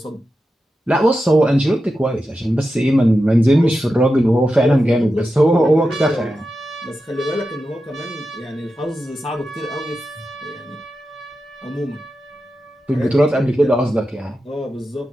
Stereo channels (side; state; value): both; normal; correlation 0.90